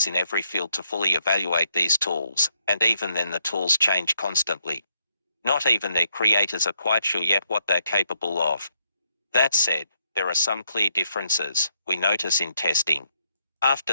in every field to fully evaluate these tools, and even then the tools change constantly. Not even their creators are quite sure yet what they're capable of. That said, there are some clear differences we notice in testing.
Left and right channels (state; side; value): inverted; both; correlation -0.75